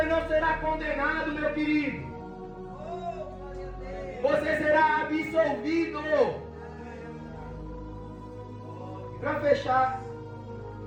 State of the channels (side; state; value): both; identical; correlation 1.00